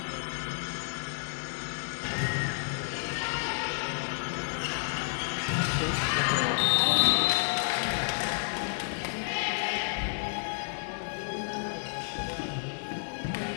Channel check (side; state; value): right; silent; digital silence